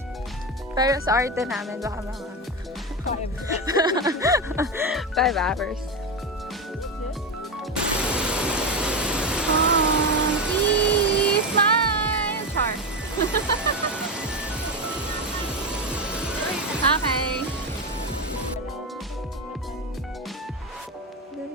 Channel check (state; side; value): normal; both; correlation 0.16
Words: Pero sa arte namin, baka mga 5 hours. Smile! Char. Okay.